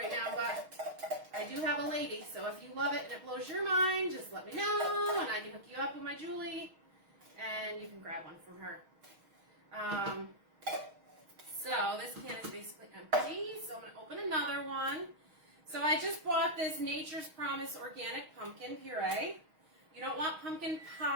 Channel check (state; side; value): late; left; 6.3 ms